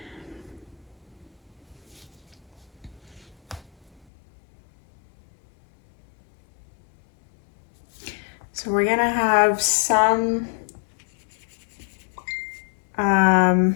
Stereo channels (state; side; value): drops out; right; at 4.0 s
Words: So we're gonna have some